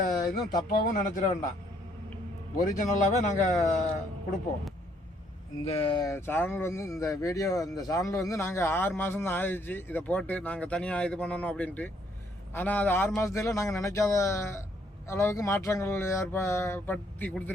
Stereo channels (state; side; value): normal; both; correlation 0.68